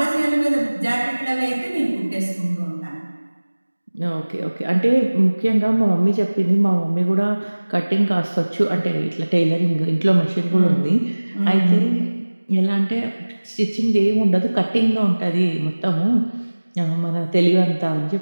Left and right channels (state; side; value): inverted; both; correlation -1.00